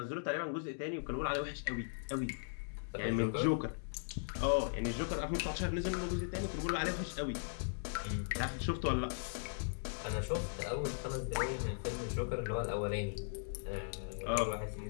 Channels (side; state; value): right; silent; digital silence